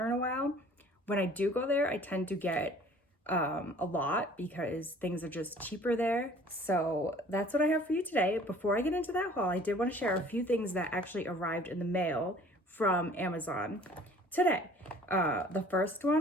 in a while. When I do go there, I tend to get a lot because things are just cheaper there. So that's what I have for you today. Before I get into that haul, I did want to share a few things that actually arrived in the mail from Amazon today. The first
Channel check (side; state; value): both; normal; correlation 0.51